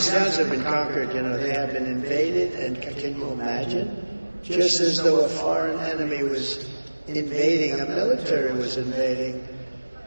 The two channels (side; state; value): both; inverted; correlation -1.00